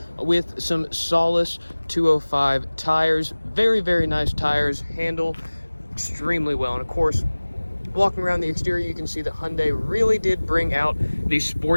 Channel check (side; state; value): both; inverted; correlation -1.00